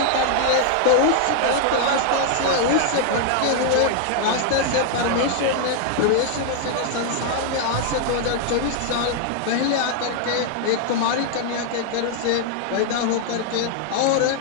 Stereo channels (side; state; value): both; different; correlation 0.00